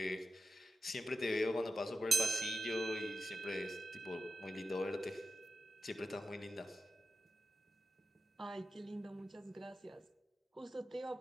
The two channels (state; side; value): normal; both; correlation 0.91